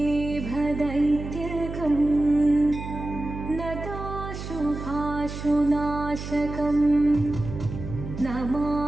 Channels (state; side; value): noise; right; hum, 9 dB below the sound